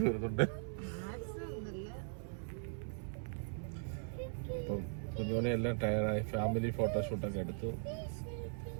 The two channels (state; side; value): silent; left; 51 dB below the other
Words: വരുന്നുണ്ട്. അപ്പം കുഞ്ഞോനെ എല്ലാം ടയറായി. ഫാമിലി ഫോട്ടോഷൂട്ടൊക്കെ എടുത്തു.